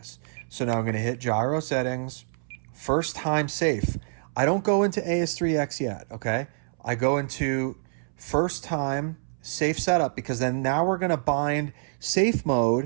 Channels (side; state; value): left; silent; 60 dB below the other